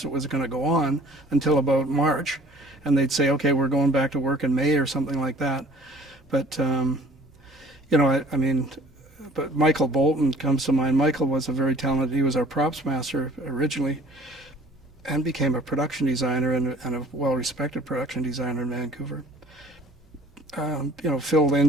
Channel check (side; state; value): both; normal; correlation 0.52